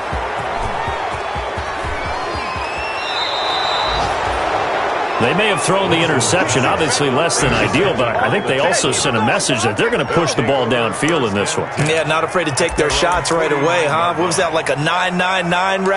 They may have thrown the interception, obviously less than ideal, but I think they also sent a message that they're going to push the ball downfield in this one. Yeah, not afraid to take their shots right away, huh? What was that, like a 9-9-9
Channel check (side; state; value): both; identical; correlation 1.00